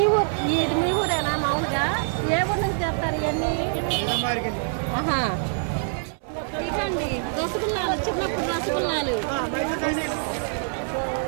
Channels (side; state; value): left; silent; 62 dB below the other